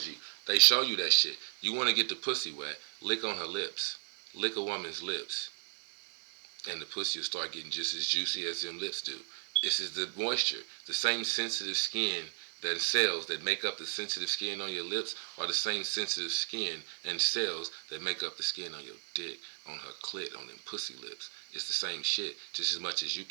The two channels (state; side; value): silent; left; 55 dB below the other